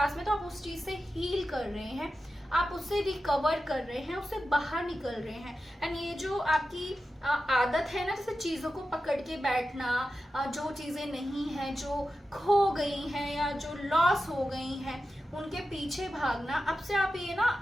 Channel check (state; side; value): normal; both; correlation 0.92